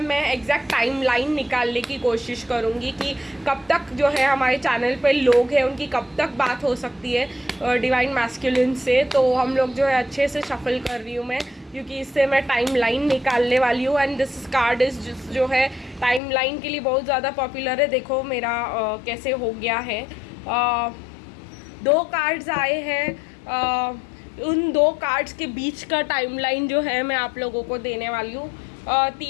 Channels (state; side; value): drops out; right; at 16.2 s